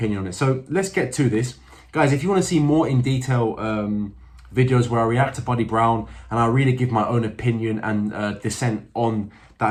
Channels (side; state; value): both; identical; correlation 1.00